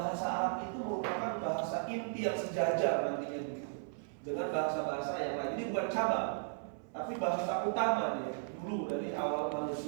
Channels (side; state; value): left; silent; 54 dB below the other